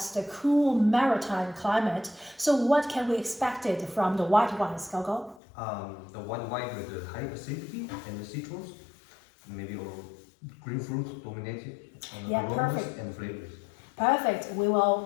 the cool maritime climate. So what can we expect it from the white wines, Gogo? The white wine with the high acidity and the citrus, maybe or green fruit dominated Yeah, aromas perfect. and flavors. Perfect. We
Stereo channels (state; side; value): drops out; right; at 5.4 s